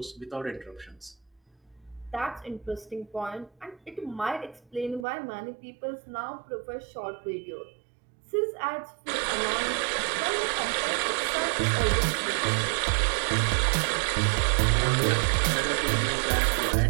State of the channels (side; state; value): left; drops out; at 5.1 s